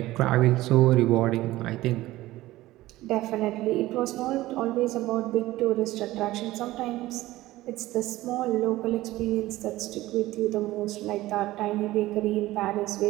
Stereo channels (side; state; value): left; quieter; 17.0 dB